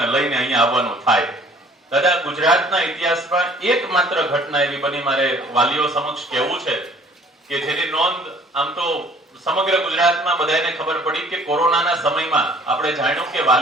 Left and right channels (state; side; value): normal; both; correlation 0.55